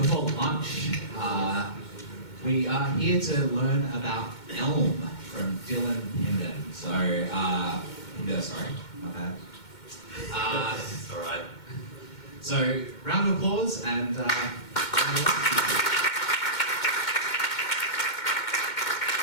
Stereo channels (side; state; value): right; late; 2.2 ms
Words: lunch, we are here to learn about Elm from Dylan Pindur. So, Pindur, sorry, my bad. It's all right. So, round of applause and Sweet,